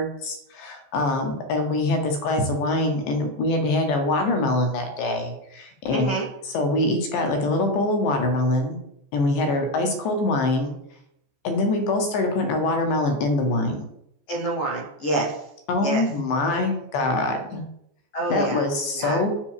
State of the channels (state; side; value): late; right; 14 ms